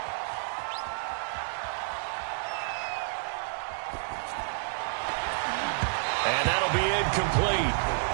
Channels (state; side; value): silent; left; digital silence